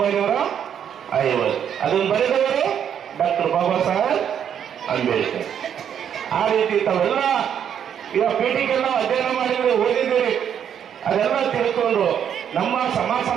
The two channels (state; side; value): quieter; left; 8.8 dB